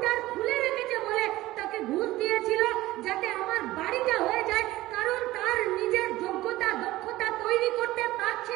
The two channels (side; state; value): left; quieter; 17.2 dB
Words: খুলে রেখেছে বলে তাকে ঘুষ দিয়েছিল যাতে আমার বাড়িটা হয়ে যায়, কারণ তার নিজের যোগ্যতা দক্ষতা তৈরি করতে